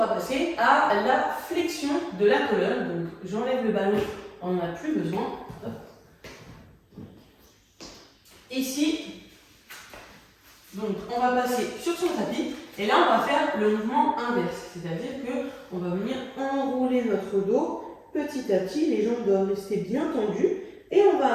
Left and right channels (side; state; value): both; identical; correlation 1.00